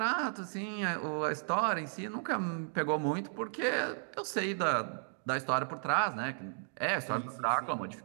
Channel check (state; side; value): silent; left; 55 dB below the other